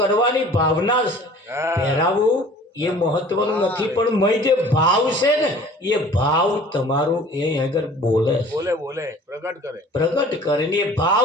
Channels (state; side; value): normal; both; correlation 0.48